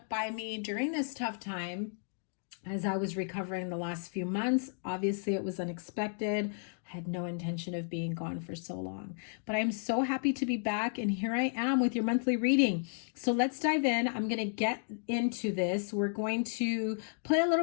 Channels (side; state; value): right; silent; digital silence